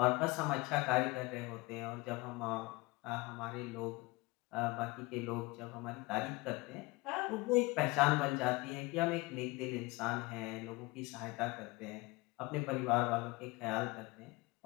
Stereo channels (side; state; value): right; quieter; 23.8 dB